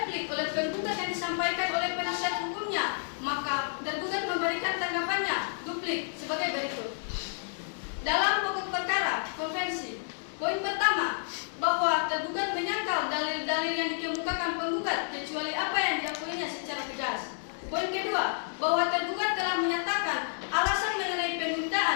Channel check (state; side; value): silent; right; 58 dB below the other